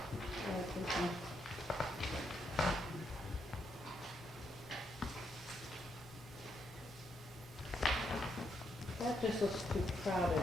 like this one. That just looks too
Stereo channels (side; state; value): both; normal; correlation 0.78